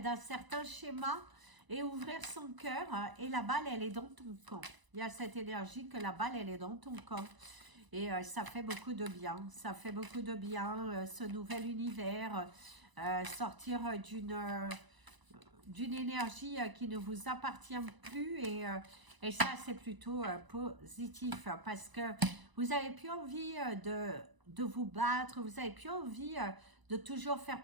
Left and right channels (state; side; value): late; left; 1.0 ms